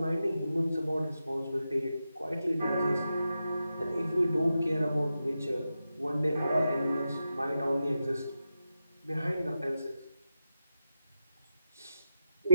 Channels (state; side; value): inverted; both; correlation -0.89